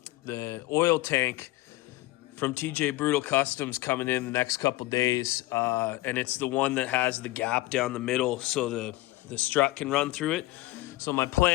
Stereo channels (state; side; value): quieter; right; 18.2 dB